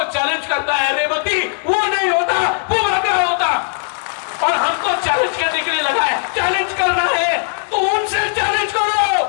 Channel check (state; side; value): silent; right; 68 dB below the other